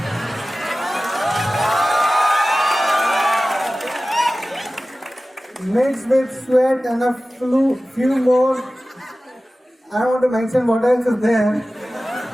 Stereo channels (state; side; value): normal; both; correlation 0.96